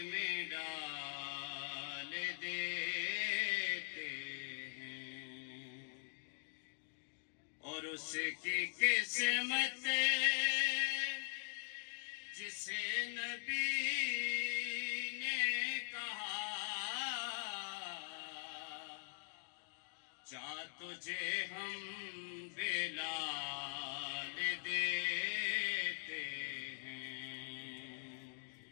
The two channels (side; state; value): right; silent; digital silence